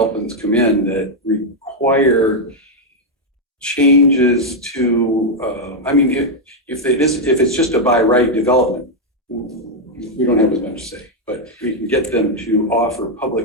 come in that require changes to, I mean, if it's just a by right development, we don't have as much to say, but we can get them to offer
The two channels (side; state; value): both; normal; correlation 0.00